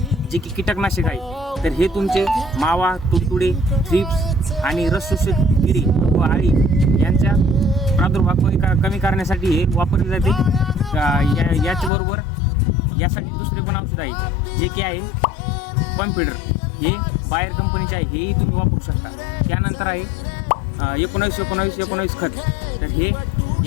जे की कीटकनाशक आहे. तर हे तुमचे मावा, तुडतुडे, थ्रिप्स आणि रस शोषक किडी व आळी यांच्या प्रादुर्भाव कमी करण्यासाठी हे वापरले जाते. याचबरोबर यासाठी दुसरे पण औषध आहे, जे की आहे कॉन्फिडर. हे बायर कंपनीचे आहे, हेही तुम्ही वापरू शकता. त्यानंतर आहे 19-19-19 खत. तर हे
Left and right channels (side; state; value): right; drops out; at 11.9 s